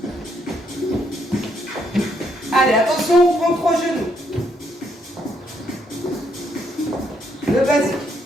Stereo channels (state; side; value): normal; both; correlation 0.73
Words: Allez, attention, on prend 3 genoux. Le basique.